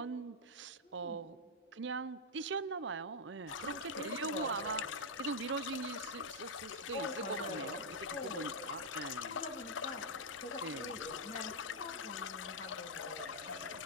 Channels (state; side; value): normal; both; correlation -0.04